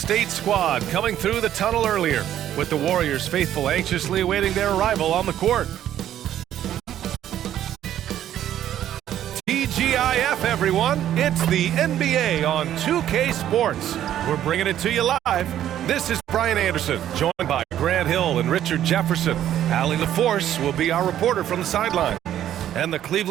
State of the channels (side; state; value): left; quieter; 11.4 dB